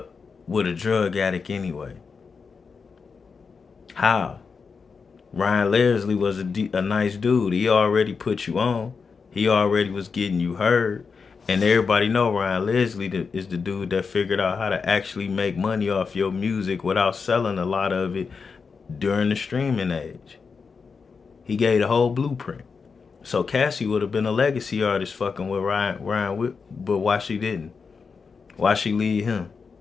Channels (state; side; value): quieter; right; 5.3 dB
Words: with a drug addict anyway? How? Ryan Leslie was a nice dude. He already put you on. He already was getting you heard. And everybody know Ryan Leslie is the dude that figured out how to actually make money off your music without selling a lot of it during the streaming age. He gave the whole blueprint. So Cassie would have been a legacy artist fucking with Ryan, but why she didn't? Why she leave him?